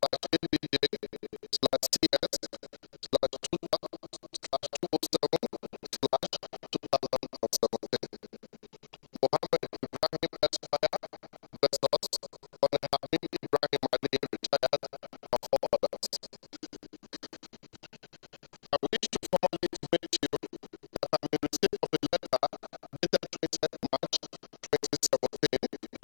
Mohammed Ibrahim Esquire versus Colonel Hamid Ibrahim Ali, retired, and 4 others. I wish to formally intimate you that I'm in receipt of a letter dated 20th March 2017,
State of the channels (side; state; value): right; silent; digital silence